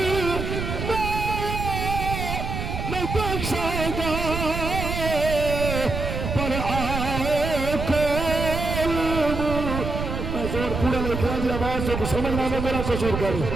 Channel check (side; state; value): right; noise; rumble, 4 dB below the sound